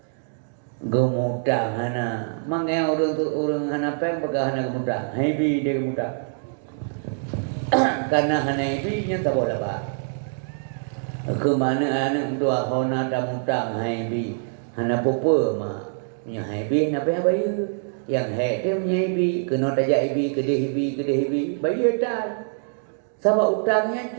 gemutang hana. Mangga orang hana peng baga hana gemutang, hebi dia gemutang. Karena hana hebi nya tak boleh ba. Ke mana anak dua kawan ada mutang hebi, hana popo ma, nya hebi na apa bayu. Yang hati menyebi, kena tajak ibi, kedih ibi, bayu dah. Sebab utangnya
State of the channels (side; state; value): left; silent; digital silence